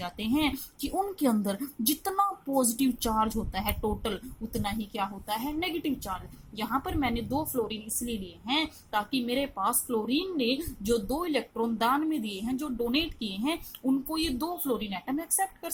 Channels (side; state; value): both; identical; correlation 1.00